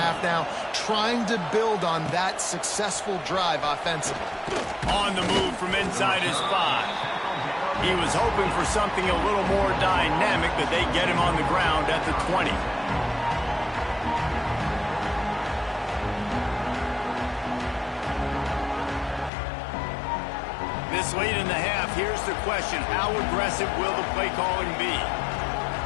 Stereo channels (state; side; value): drops out; right; at 19.3 s